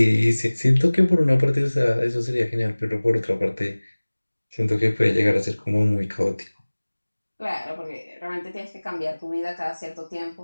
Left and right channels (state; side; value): inverted; both; correlation -1.00